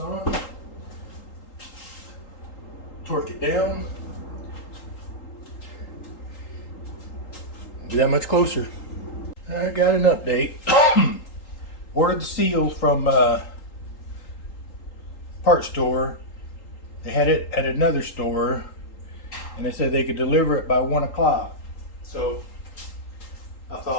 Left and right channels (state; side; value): late; right; 3.8 ms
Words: Torque it down. Be that much closer. I got an update. Ordered the seals from part store. They had it at another store, and they said they could deliver it by 1 o'clock. So I